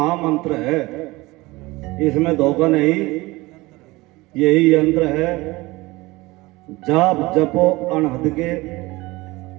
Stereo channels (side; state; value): left; quieter; 21.3 dB